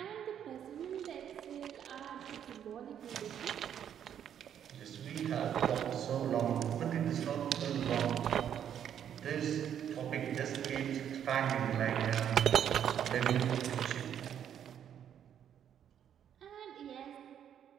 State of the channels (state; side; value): quieter; left; 9.4 dB